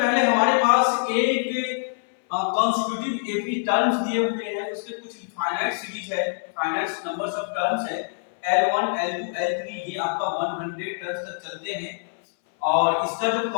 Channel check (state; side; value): silent; right; 61 dB below the other